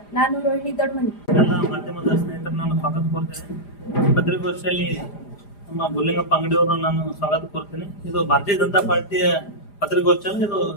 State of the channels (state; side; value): late; right; 4.9 ms